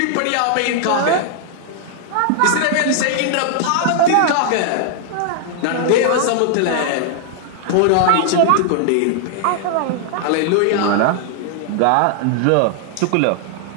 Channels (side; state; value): both; different; correlation 0.00